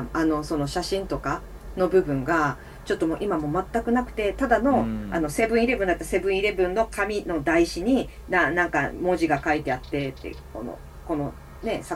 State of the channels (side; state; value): both; identical; correlation 1.00